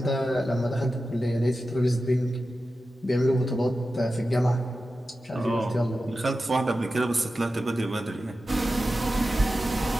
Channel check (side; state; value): both; normal; correlation 0.92